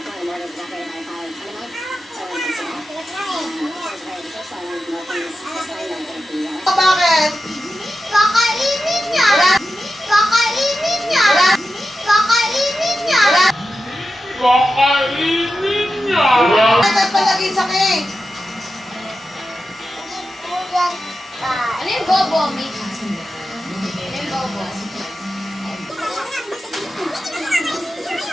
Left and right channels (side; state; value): both; normal; correlation 0.91